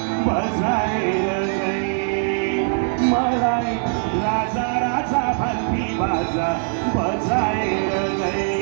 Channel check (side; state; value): left; silent; 64 dB below the other